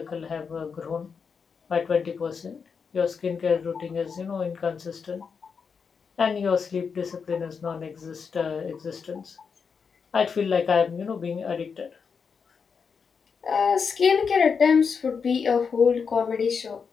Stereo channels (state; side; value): quieter; right; 5.9 dB